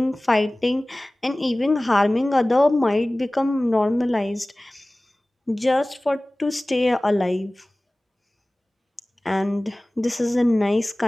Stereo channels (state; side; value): normal; both; correlation 0.98